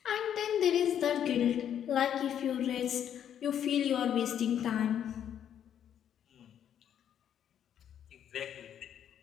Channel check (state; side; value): quieter; right; 9.5 dB